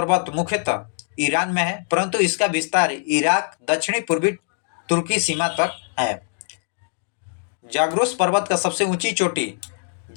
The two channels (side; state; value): right; silent; 64 dB below the other